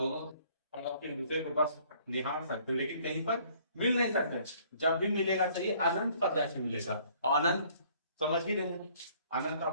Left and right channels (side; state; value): both; inverted; correlation -0.59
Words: एक दूसरे को बस निहार सकते, लेकिन कहीं पर मिल नहीं सकते। जब भी मिलेगा तो ये अनंत पर जाके मिलेगा। और अनंत समझ ही रहे हैं, अनंत